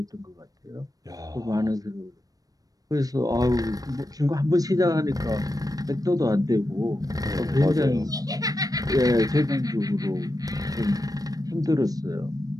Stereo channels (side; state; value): left; late; 0.18 ms